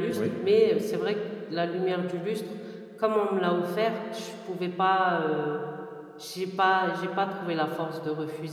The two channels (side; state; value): both; identical; correlation 1.00